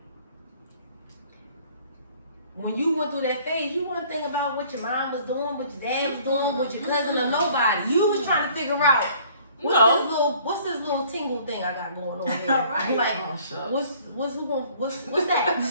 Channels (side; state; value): both; inverted; correlation -0.56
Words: when you went through that phase, you weren't thinking about what your mom was doing, what your dad was doing, what your cousin or nobody. You was trying to figure out What's this little tingle thing I got going on here? Right. Like, Oh, what's